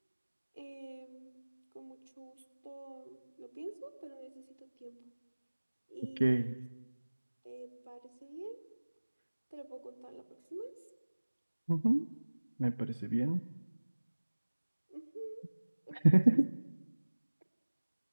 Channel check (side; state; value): both; inverted; correlation -1.00